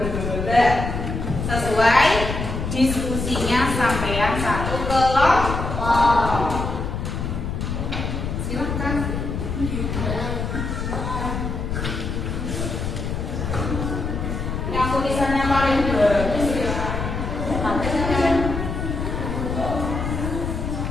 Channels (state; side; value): noise; left; rumble, 3 dB below the sound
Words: Sesuai diskusinya sampean satu kelompok. Silakan. Yang tulisannya paling bagus ya.